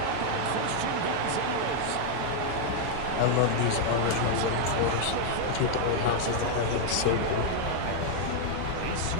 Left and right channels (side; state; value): both; different; correlation 0.00